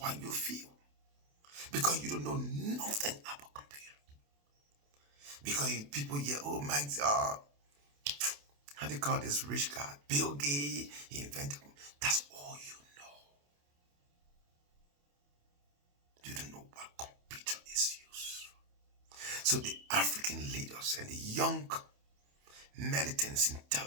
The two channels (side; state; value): left; late; 28 ms